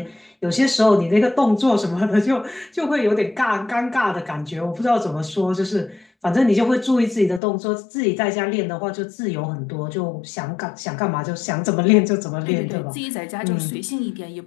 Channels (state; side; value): drops out; right; at 7.4 s